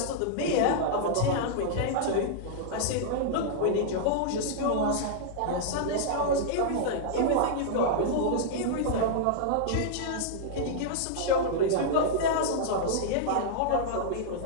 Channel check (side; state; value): both; different; correlation -0.01